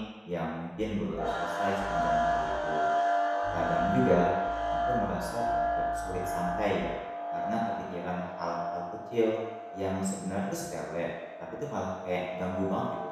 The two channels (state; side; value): identical; both; correlation 1.00